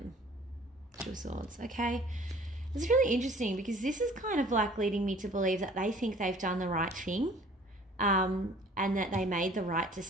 Two of Swords. Okay. It's really interesting because this is kind of like leading me to believe that they think they've done the right thing, and that they made the right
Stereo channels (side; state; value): both; normal; correlation 0.52